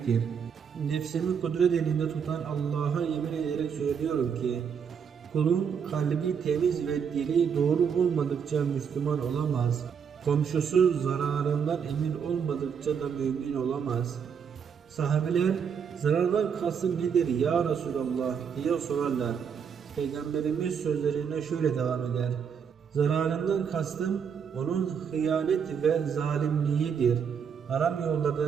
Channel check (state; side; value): quieter; left; 7.0 dB